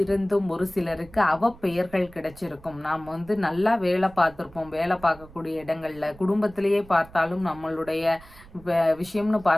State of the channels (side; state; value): right; noise; rumble, 22 dB below the sound